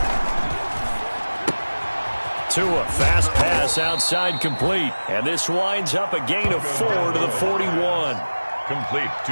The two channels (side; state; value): both; inverted; correlation -1.00